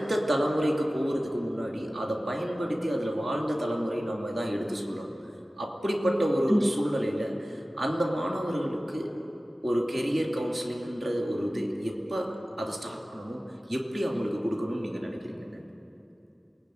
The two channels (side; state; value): both; normal; correlation 0.97